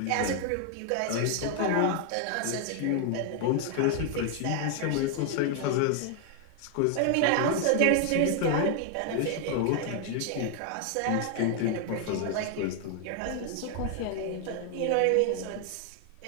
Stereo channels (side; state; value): both; different; correlation 0.00